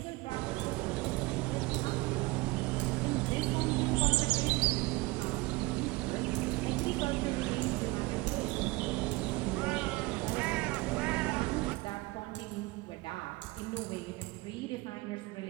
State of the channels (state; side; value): quieter; left; 22.3 dB